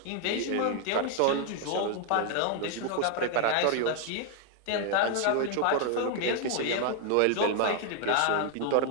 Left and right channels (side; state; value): both; different; correlation 0.00